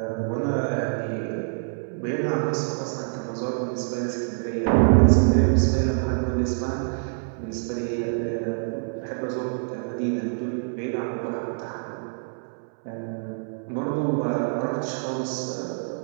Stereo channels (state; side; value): silent; left; 61 dB below the other